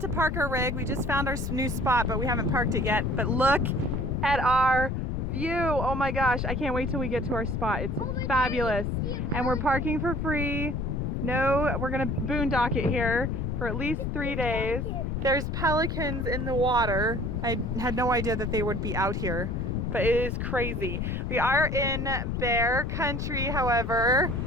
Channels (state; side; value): noise; left; rumble, 2 dB below the sound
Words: to park our rig. We just found our new spot, but we haven't parked it yet. But look at our view. Oh my gosh, I can't wait till we get to our spot. It's fabulous. And we're parking for free. No, we're gonna boondock it here for at least 3 days. There's pelicans in the water. I had no idea that they would be out here, but it is crazy. We are in bear country, however,